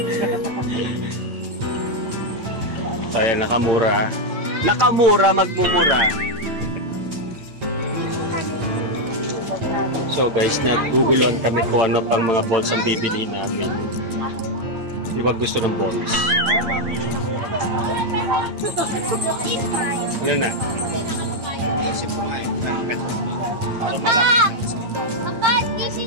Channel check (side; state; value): left; late; 8.9 ms